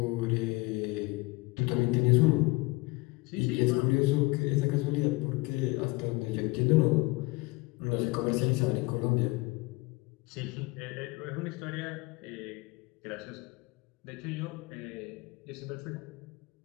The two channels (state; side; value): quieter; right; 23.9 dB